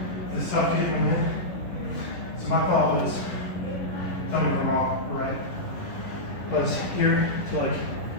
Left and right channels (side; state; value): right; late; 11 ms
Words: is tough getting them in. So my thought was, tell me if I'm wrong, right? Was here to like